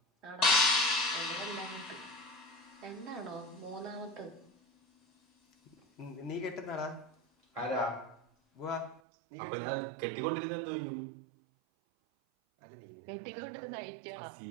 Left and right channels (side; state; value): left; drops out; at 9.0 s